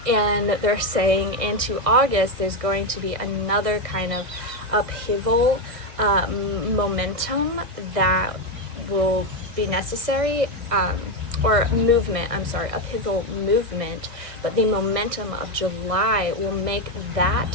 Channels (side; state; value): left; late; 1.6 ms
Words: And they're saying into August, there's going to be another kind of upheaval momentum that will be necessary, or movement, upheaval movement, but the momentum of July will make